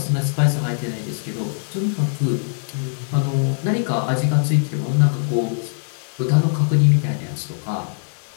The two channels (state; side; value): silent; right; digital silence